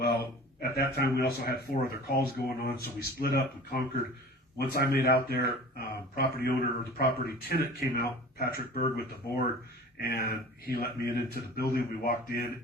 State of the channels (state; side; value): normal; both; correlation 0.41